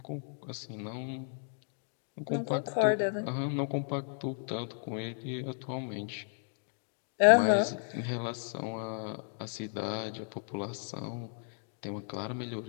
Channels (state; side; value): silent; right; 55 dB below the other